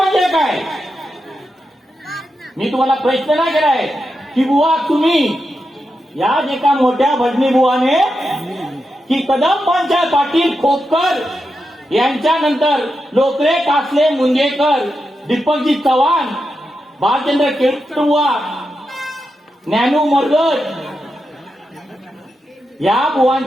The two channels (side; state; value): both; normal; correlation 0.87